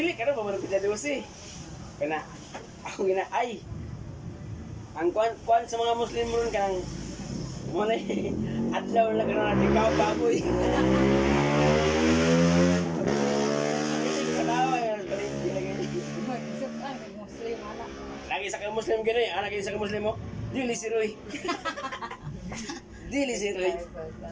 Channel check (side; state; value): both; identical; correlation 1.00